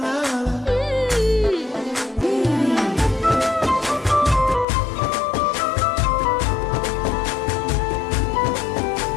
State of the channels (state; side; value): drops out; right; at 4.7 s